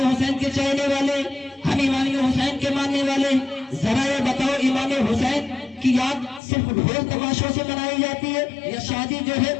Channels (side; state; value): right; drops out; at 6.4 s